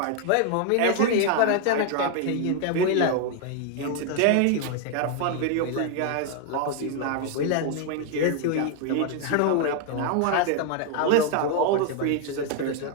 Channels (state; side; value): different; both; correlation 0.00